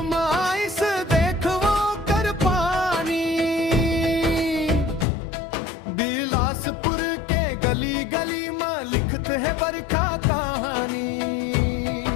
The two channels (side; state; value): right; drops out; at 5.1 s